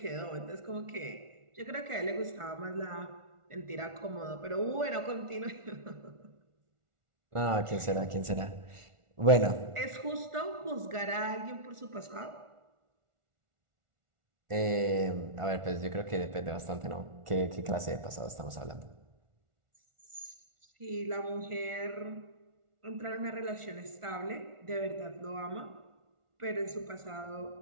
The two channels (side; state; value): left; late; 1.4 ms